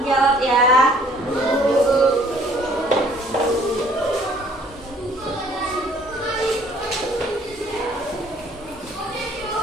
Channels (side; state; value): both; normal; correlation 0.58